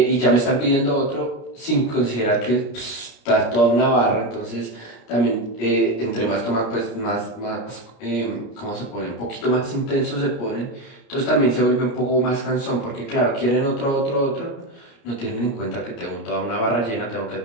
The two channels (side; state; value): right; late; 29 ms